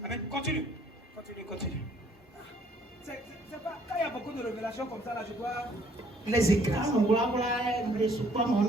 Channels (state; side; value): normal; both; correlation 0.62